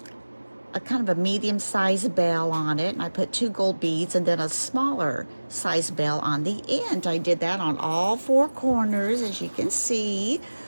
kind of a medium-sized bell on it, and I put 2 gold beads and then a smaller size bell on the end. I did that on all 4 corners, as you can see.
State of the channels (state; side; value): inverted; both; correlation -1.00